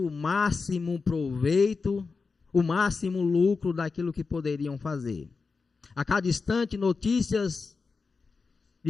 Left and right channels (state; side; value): quieter; right; 4.6 dB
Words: máximo proveito, o máximo lucro daquilo que poderiam fazer. A cada instante, notícias